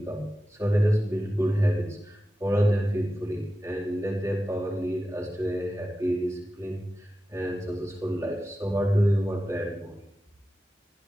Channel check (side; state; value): both; normal; correlation 0.93